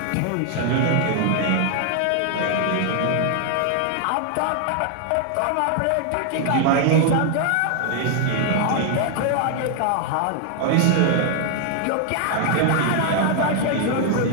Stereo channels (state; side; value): different; both; correlation 0.00